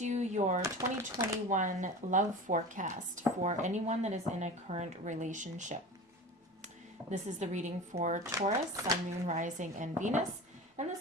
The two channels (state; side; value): normal; both; correlation 0.33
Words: your 2021 love forecast for anyone that is in a current relationship. This is the reading for Taurus, Sun, Moon, Rising, and Venus, and